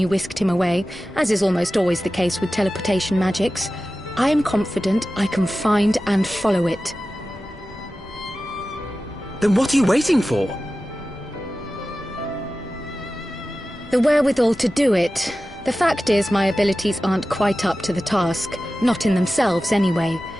whisked him away, as is almost always the case with teleportation magics, I am confident I can find and follow it. Then what are you waiting for? The wherewithal to do it. The fact is, my abilities aren't quite up to the task. Not in themselves, anyway.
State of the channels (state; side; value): normal; both; correlation 0.95